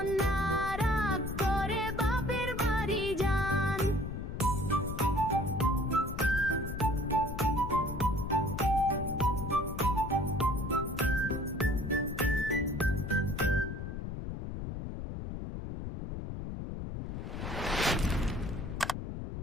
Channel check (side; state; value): left; noise; rumble, 6 dB below the sound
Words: রাগ করে বাপের বাড়ি যান